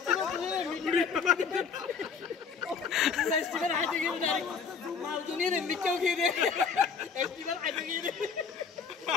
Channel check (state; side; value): quieter; right; 5.8 dB